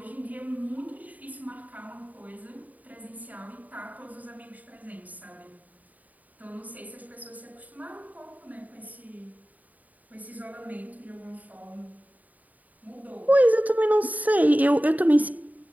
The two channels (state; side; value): late; left; 0.075 ms